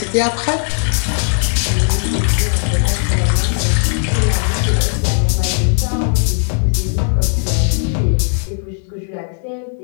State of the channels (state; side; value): silent; right; 69 dB below the other